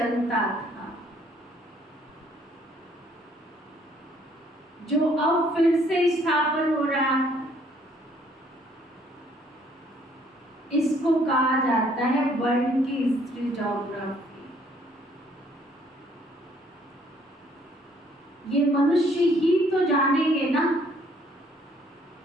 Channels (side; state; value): both; normal; correlation 0.63